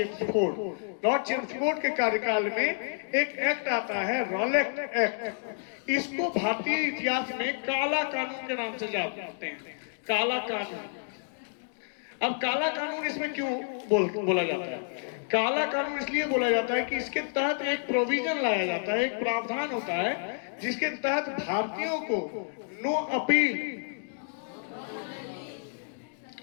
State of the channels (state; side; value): silent; right; digital silence